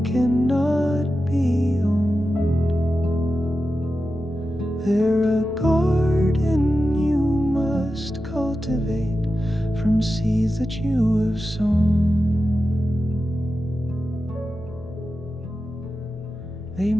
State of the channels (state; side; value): noise; left; rumble, 21 dB below the sound